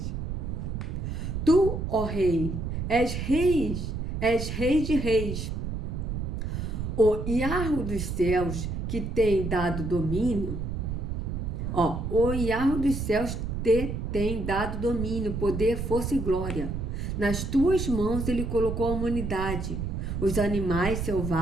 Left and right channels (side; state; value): right; noise; rumble, 3 dB below the sound